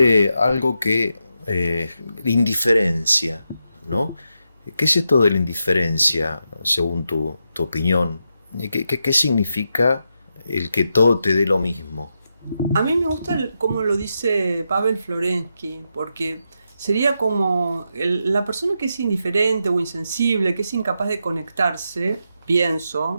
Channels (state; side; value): inverted; both; correlation -0.85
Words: algo que indiferencia, ¿no? ¿Qué es esto de la indiferencia, según tu opinión? ¿Qué significa el que todo te dé lo mismo? A mí me gusta cómo lo dice Pavel Florensky, porque sería como la persona que es indiferente o insensible, que es incapaz de conectarse,